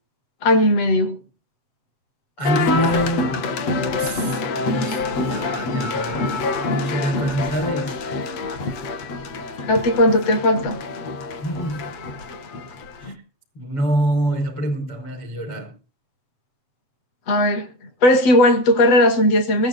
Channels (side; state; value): right; late; 8.1 ms